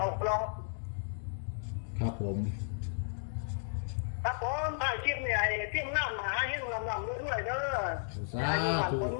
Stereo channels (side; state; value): right; silent; digital silence